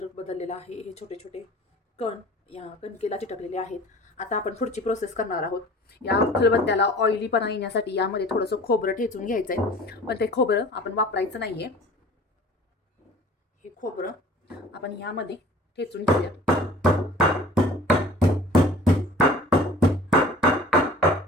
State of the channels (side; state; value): both; normal; correlation 0.45